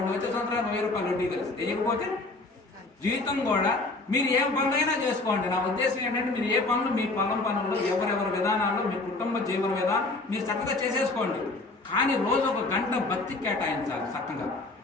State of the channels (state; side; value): quieter; right; 3.2 dB